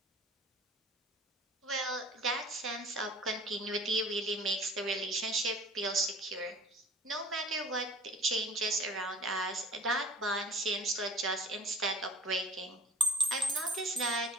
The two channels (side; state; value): both; normal; correlation 0.48